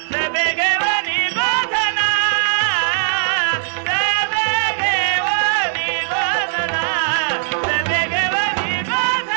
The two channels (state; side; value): silent; left; digital silence